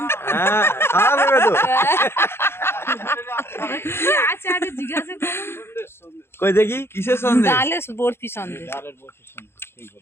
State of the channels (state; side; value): late; right; 0.12 ms